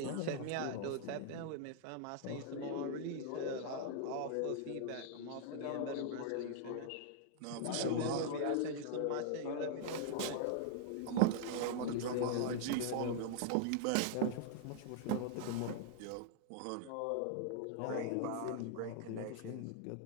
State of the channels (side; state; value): both; different; correlation -0.01